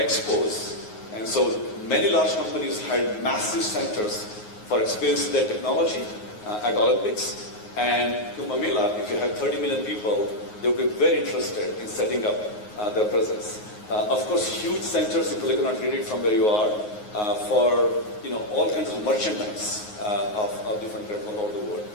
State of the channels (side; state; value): right; late; 9.5 ms